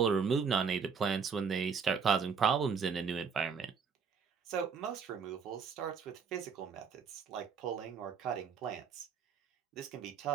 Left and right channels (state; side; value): quieter; left; 6.2 dB